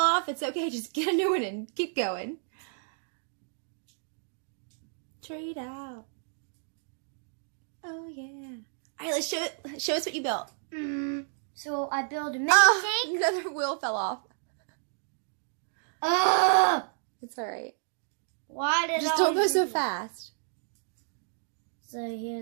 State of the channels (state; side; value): silent; left; digital silence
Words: off, it's okay. Just get a new one and keep going. Trade out. Oh, yeah. All right, let's show us what you built. So I built a mini tank. Another wheel fell off. It's all right. Why did Just don't go so fast. So